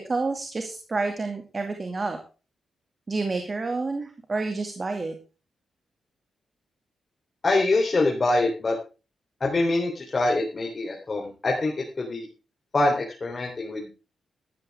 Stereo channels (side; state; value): both; normal; correlation 0.91